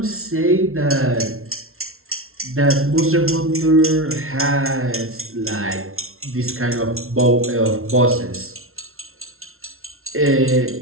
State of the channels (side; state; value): left; late; 0.62 ms